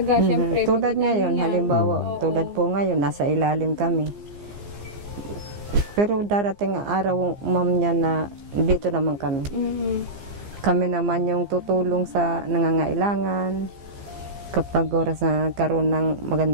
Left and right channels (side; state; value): left; late; 15 ms